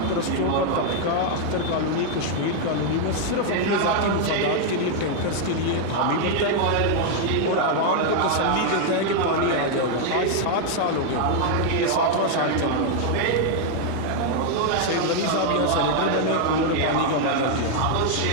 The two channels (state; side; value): different; both; correlation 0.00